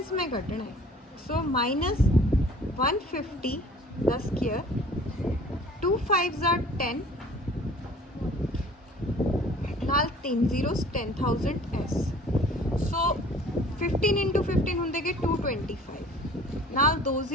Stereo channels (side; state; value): both; normal; correlation 0.50